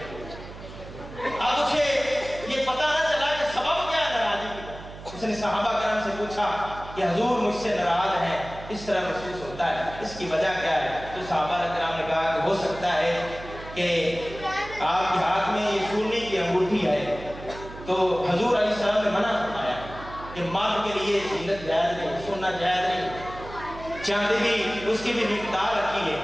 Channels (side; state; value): right; noise; hum, 14 dB below the sound